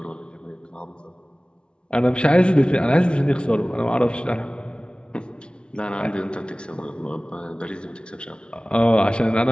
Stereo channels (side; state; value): right; late; 0.057 ms